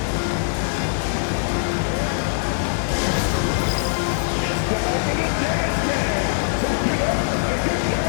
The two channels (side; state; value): right; silent; digital silence